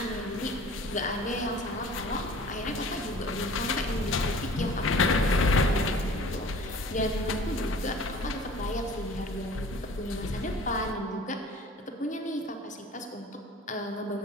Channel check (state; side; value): normal; both; correlation 0.46